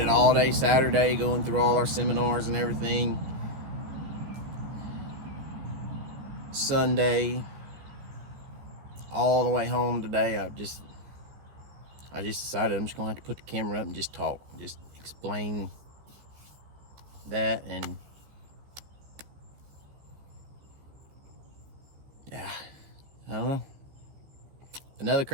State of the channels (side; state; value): left; late; 15 ms